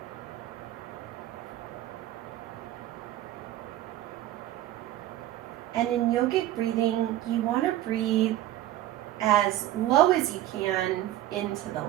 And in yogic breathing, you want to breathe as low as you can into the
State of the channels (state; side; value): quieter; left; 14.1 dB